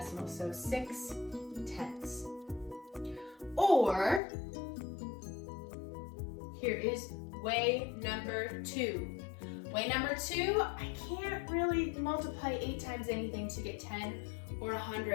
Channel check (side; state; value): right; drops out; at 4.2 s